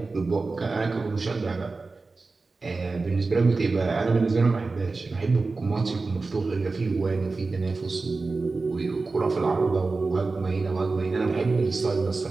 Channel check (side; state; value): left; quieter; 3.8 dB